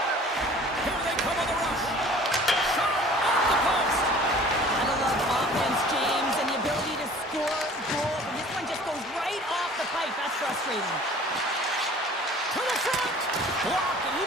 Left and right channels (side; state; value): both; normal; correlation 0.48